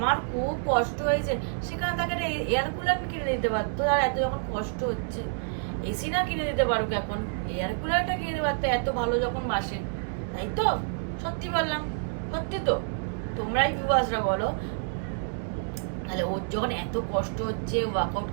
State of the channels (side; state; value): left; silent; 59 dB below the other